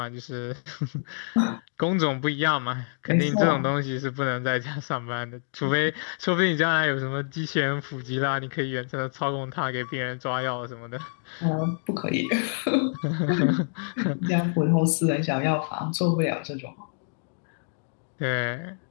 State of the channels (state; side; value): silent; right; digital silence